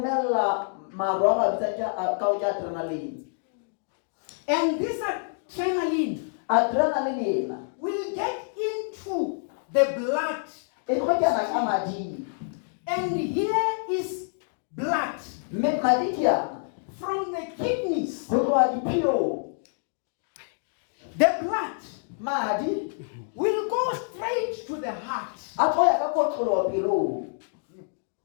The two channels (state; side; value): silent; right; digital silence